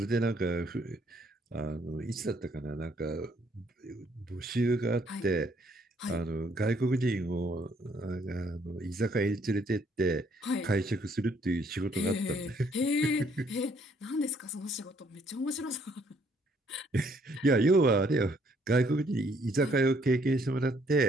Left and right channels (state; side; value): normal; both; correlation 0.66